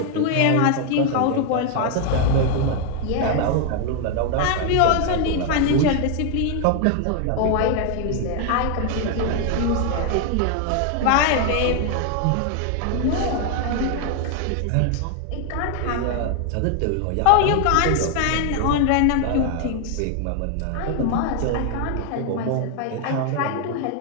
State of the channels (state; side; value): different; both; correlation 0.00